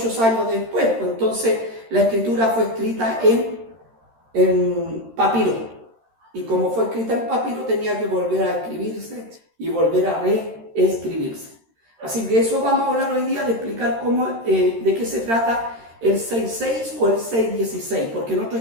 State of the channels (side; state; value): left; late; 13 ms